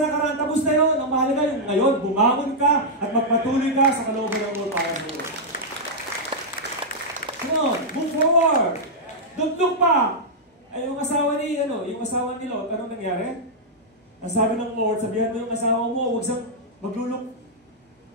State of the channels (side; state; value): both; normal; correlation -0.07